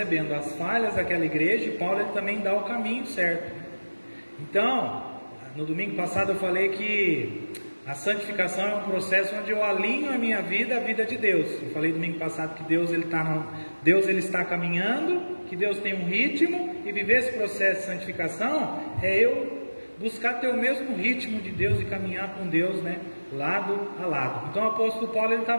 as falhas daquela igreja, e Paulo ele também dá o caminho certo. Então, no domingo passado eu falei que a santificação é um processo onde eu alinho a minha vida à vida de Deus. Eu falei domingo passado que Deus ele está caminhando, que Deus tem um ritmo, e viver esse processo de santificação é eu buscar ter o mesmo ritmo de Deus e caminhar com Deus, né, lado a lado. Então o apóstolo Paulo ele está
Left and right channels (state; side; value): inverted; both; correlation -1.00